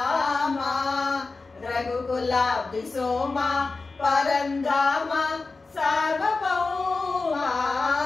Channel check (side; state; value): right; quieter; 3.9 dB